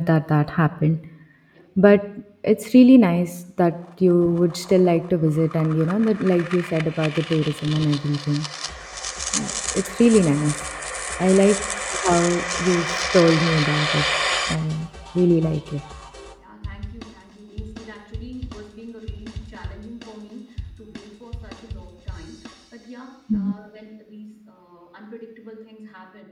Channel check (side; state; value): both; identical; correlation 1.00